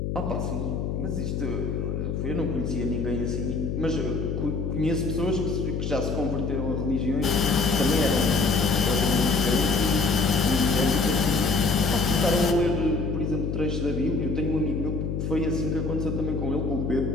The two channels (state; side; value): noise; left; hum, 2 dB below the sound